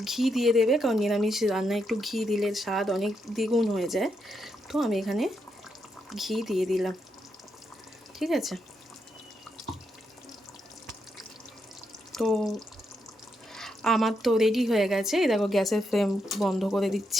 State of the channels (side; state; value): both; normal; correlation 0.81